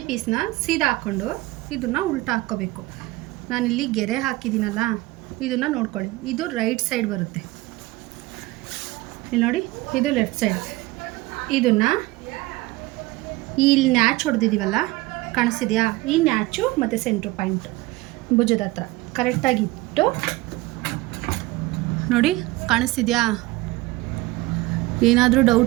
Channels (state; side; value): quieter; left; 20.1 dB